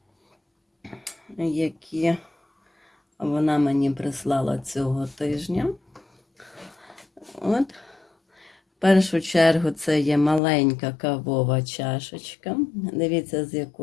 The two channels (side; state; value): right; drops out; at 10.4 s